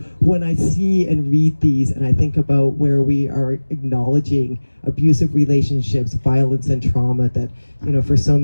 when I see and read these, and I think about where we are acknowledging abusive relationships, violence and trauma, that, for so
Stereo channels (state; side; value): inverted; both; correlation -1.00